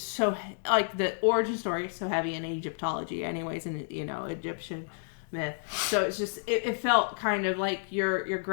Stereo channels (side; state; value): right; silent; digital silence